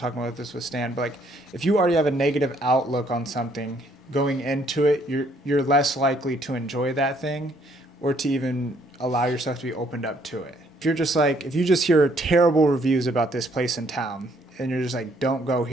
about this with Stan, but if you already have a negative outlook on something going into it, you're less likely to enjoy that thing or to even allow yourself to be opened up to it. If you just hear terrible reviews about this place in town and you're just don't go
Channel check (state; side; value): normal; both; correlation 0.66